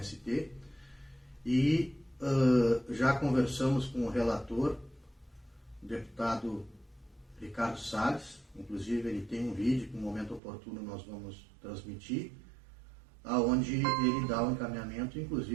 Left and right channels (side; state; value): left; drops out; at 10.4 s